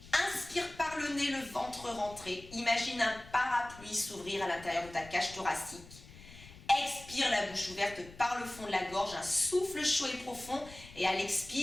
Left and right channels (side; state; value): left; noise; rumble, 18 dB below the sound